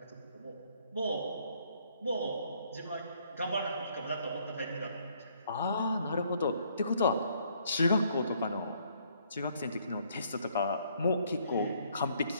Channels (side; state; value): both; inverted; correlation -0.66